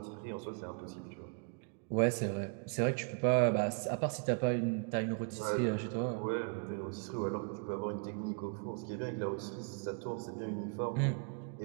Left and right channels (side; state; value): left; quieter; 38.5 dB